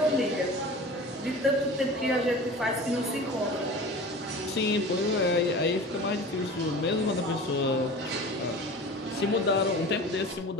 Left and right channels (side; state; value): both; normal; correlation 0.37